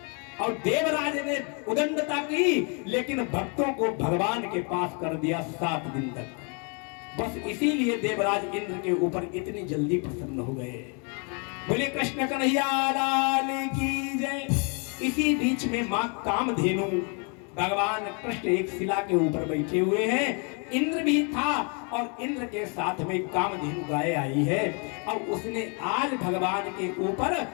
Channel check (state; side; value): quieter; right; 36.4 dB